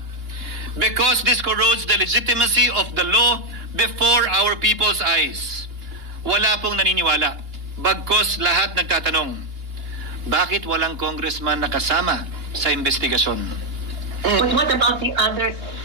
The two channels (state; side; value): late; left; 2.9 ms